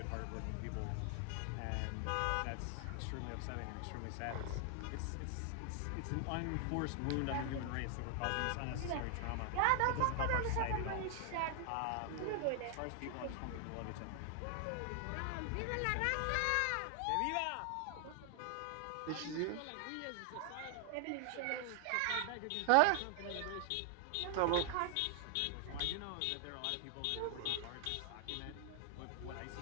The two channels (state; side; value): different; both; correlation 0.00